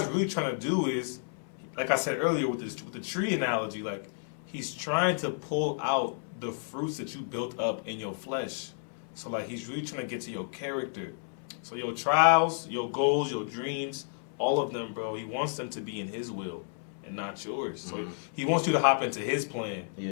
really trying to do is, like I said earlier with the tree analogy, like He's trying to pull out the fruits that you built up in your flesh. So like He's really trying to get to your character. So your trials, your goals, your dreams, all of them, bro, He wants them to be in His will and not yours. So He wants you to hop into His plan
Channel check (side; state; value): right; silent; 57 dB below the other